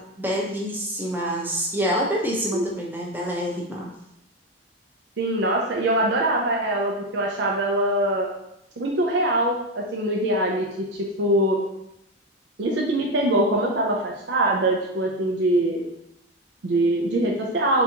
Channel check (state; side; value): normal; both; correlation 0.13